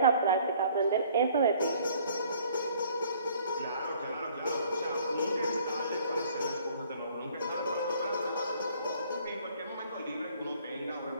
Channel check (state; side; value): inverted; both; correlation -0.58